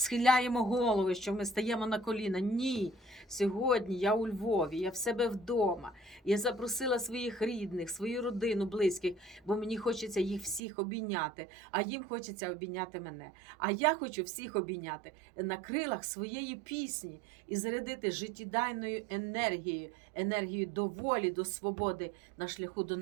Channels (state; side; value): drops out; left; at 10.6 s